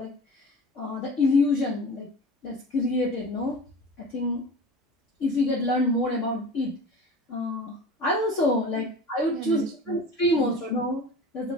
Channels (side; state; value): both; normal; correlation 0.37